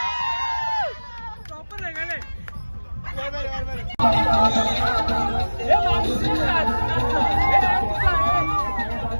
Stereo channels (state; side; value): inverted; both; correlation -1.00